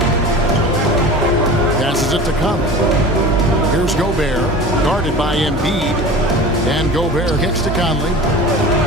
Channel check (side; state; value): both; normal; correlation 0.36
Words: Passes it to Conley. Here's Gobert. Guarded by Embiid. And Gobert kicks to Conley.